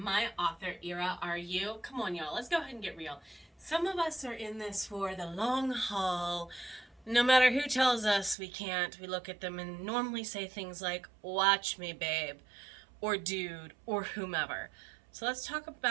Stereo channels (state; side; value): drops out; left; at 8.3 s